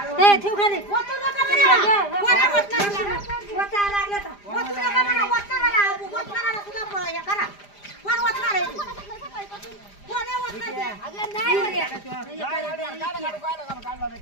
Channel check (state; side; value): late; right; 5.0 ms